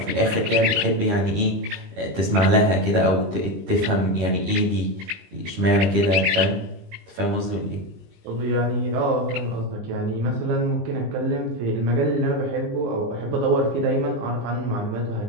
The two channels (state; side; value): late; left; 20 ms